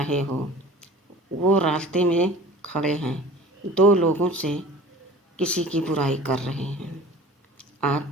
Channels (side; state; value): both; normal; correlation 0.44